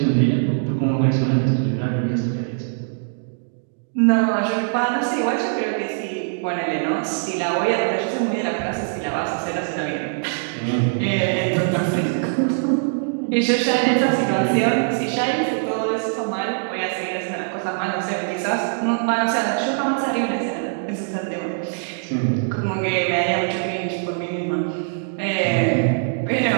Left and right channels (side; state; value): left; silent; digital silence